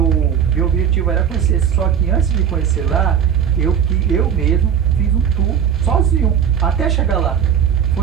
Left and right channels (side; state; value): left; quieter; 8.4 dB